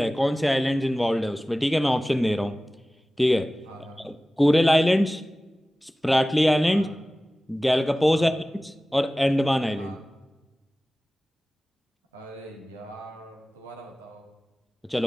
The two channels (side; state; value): both; normal; correlation 0.97